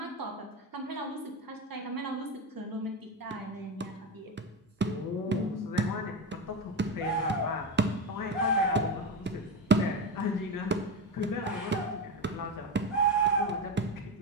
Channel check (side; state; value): both; normal; correlation 0.18